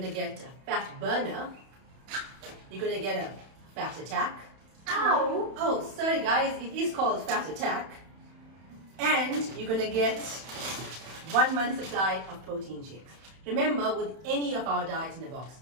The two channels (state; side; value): late; left; 31 ms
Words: to get a fat burner. You're going to get a fat attack. Ow! Oh, sorry guys, it is called fat attack. And you're going to get 1 month supply of protein shakes. Remember, with any of our diets in a box,